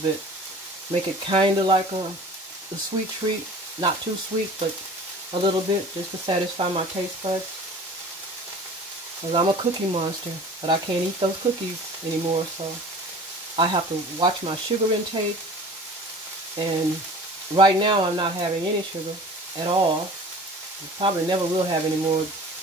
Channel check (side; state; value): both; normal; correlation 0.43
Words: bit. Make it kind of like a sweet treat. Not too sweet, but a little bit, just to satisfy my taste buds. Because I'm a cookie monster, but I can't eat those cookies anymore, so I have to watch my sugar intake. And right now, I'm not having any sugar at all. I probably never will have any more